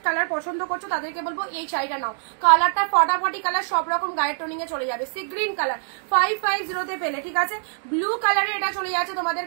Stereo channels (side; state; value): left; silent; digital silence